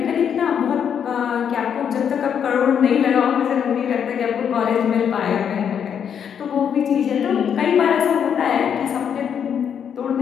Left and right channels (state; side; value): quieter; right; 8.0 dB